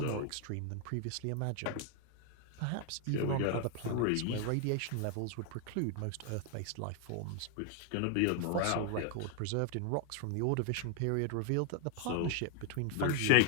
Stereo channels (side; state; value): both; different; correlation 0.00